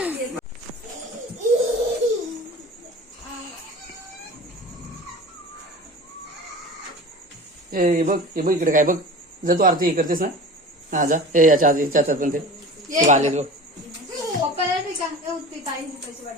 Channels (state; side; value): normal; both; correlation 0.36